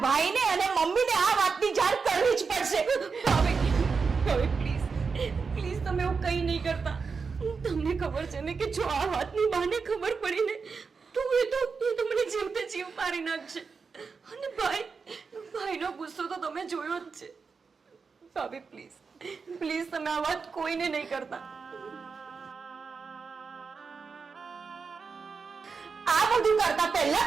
ભાઈને અને મમ્મીને આ વાતની જાણ કરવી જ પડશે. ભાભી, ભાભી પ્લીઝ પ્લીઝ તમે એવું કંઈ નહીં કરતા. તમને ખબર છે ને કે જો આ વાતની બાને ખબર પડી ને તો એ તો મને જીવતે જીવ મારી નાખશે. અને ભાઈનો ગુસ્સો તો તમે જોયો જ છે. ભાભી પ્લીઝ પ્લીઝ તમે આ વાત કોઈને નહીં કરતા. આ બધું કરતા પહેલા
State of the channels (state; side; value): quieter; left; 5.1 dB